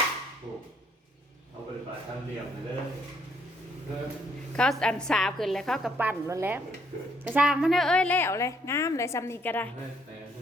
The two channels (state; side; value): normal; both; correlation 0.69